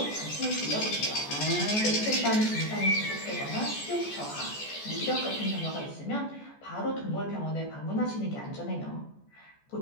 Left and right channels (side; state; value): right; late; 14 ms